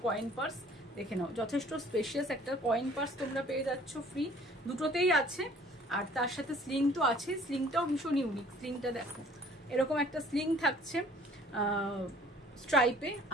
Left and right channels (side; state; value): both; normal; correlation 0.53